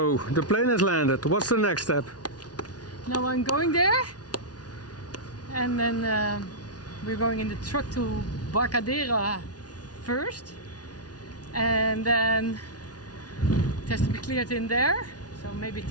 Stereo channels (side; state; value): right; late; 0.69 ms